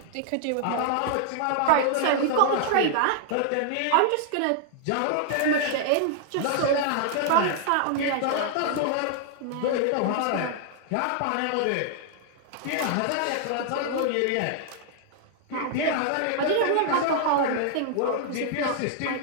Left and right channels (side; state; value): both; different; correlation -0.01